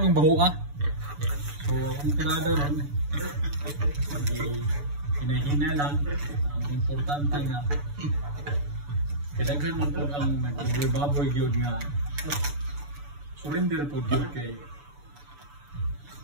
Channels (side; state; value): left; late; 6.9 ms